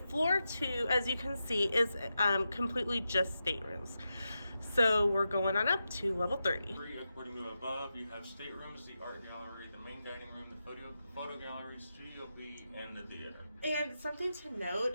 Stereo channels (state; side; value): inverted; both; correlation -0.89